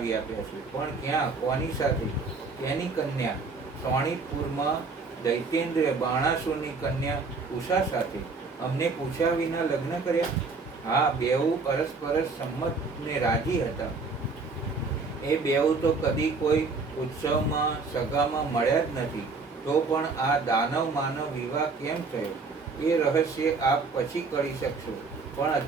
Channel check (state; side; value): quieter; left; 4.2 dB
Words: આપ્યા છે. પણ ક્યાં, કોની સાથે? તેની કન્યા સોણીતપુરમાં દૈત્યેન્દ્ર બાણાસુરની કન્યા ઉષા સાથે. અમને પૂછ્યા વિના લગ્ન કર્યા? હા, બેઉ પરસ્પરસ સંમત ને રાજી હતા. એ બેઉ તો કદી કોઈ ઉત્સવમાં સગામાં મળ્યા જ નથી. તો પણ આ દાનવ માનવ વિવાહ કેમ થયો એ રહસ્ય આપ પછી કરી શકશો. પણ